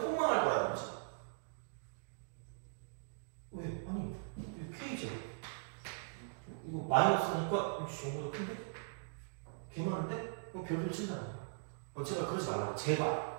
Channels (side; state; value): left; silent; digital silence